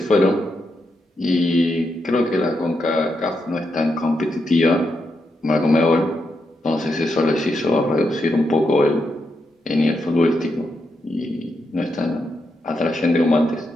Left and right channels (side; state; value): both; normal; correlation 0.83